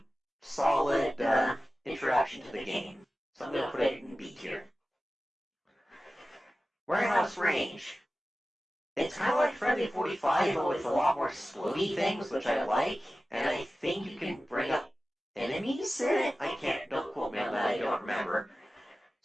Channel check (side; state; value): both; normal; correlation 0.95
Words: solid introduction to the game. So I'm going to put it in B tier. Warehouse Range. It's kind of like Friendly 45, but with a lot more explodey things, which I like. And I think you can bring up enemies in it. Don't quote me on that, I don't remember.